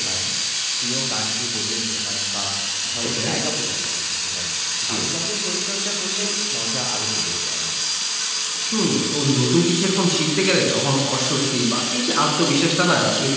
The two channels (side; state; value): both; identical; correlation 1.00